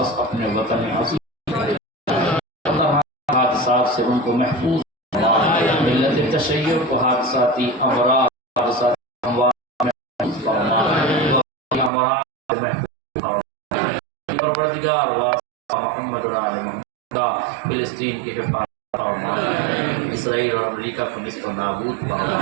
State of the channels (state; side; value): drops out; left; at 11.9 s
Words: اپنے وطن عظیم حادثات سے ان کو محفوظ فرما ملت تشیع کو حادثاتی امراض حادثاتی پروردگار واسطہ محمد و آل محمد کا فلسطین کی حفاظت فرما اسرائیل اور امریکہ کو نست و نابود